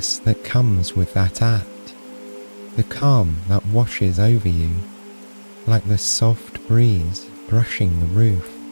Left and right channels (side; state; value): both; inverted; correlation -1.00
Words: that comes with that act, the calm that washes over you, like the soft breeze brushing the roof.